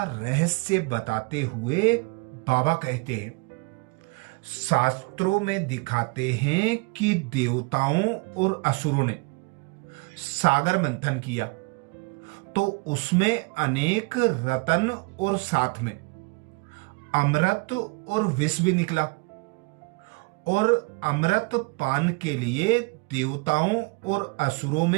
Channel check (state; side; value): quieter; left; 29.4 dB